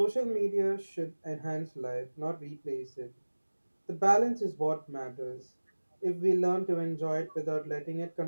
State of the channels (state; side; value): inverted; both; correlation -1.00